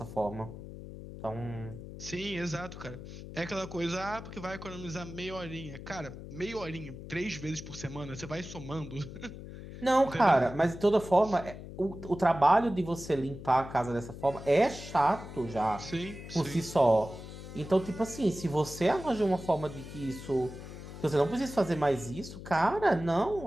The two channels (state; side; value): noise; left; hum, 12 dB below the sound